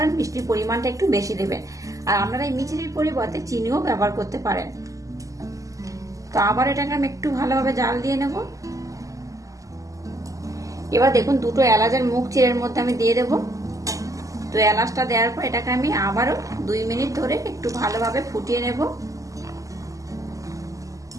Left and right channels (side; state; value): left; late; 0.16 ms